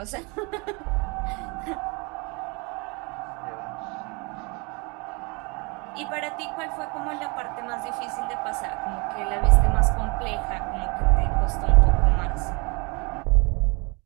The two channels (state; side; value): quieter; left; 29.8 dB